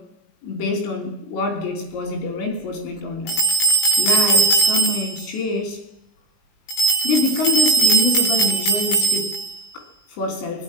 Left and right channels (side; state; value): right; late; 20 ms